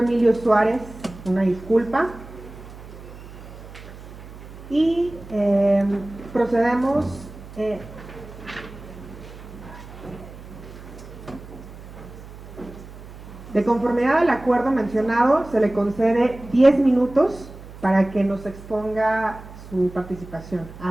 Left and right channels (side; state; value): right; noise; hum, 16 dB below the sound